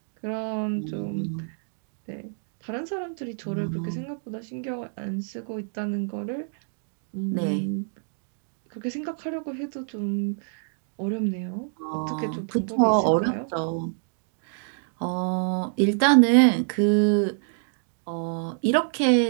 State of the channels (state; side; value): silent; left; 60 dB below the other